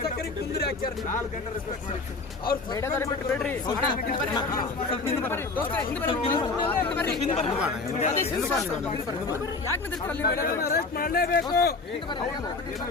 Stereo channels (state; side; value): quieter; right; 3.7 dB